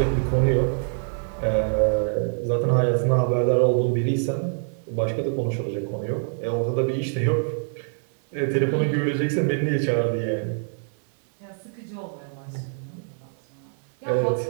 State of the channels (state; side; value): silent; left; 62 dB below the other